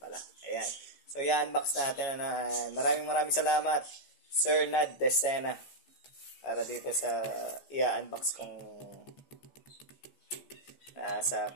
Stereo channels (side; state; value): right; late; 14 ms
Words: Ayan. So, i-unbox natin. Maraming salamat, Sir Nad Decena, para dito sa i-unbox kong nasa